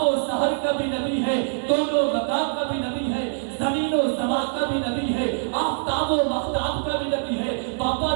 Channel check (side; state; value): left; silent; 63 dB below the other